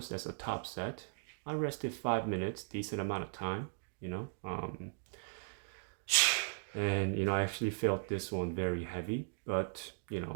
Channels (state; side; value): silent; left; digital silence